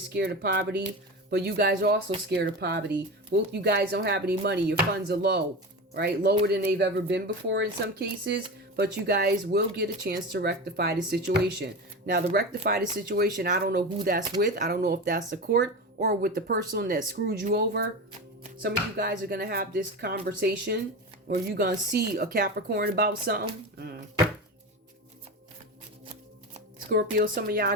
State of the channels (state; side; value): normal; both; correlation 0.25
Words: of poverty. But you guys are also scared of poverty. Both you guys don't have any money. Your funds are low. Right? Lower than they've ever been before in some cases. But you guys will get a chance to rectify the situation. Now, to rectify the situation, I don't know who that's with. I don't know if that's the court or with the person that screwed you over. Some of you guys are going to have this conversation. Or you're going to see a Capricorn about something. Scorpio, some of y'all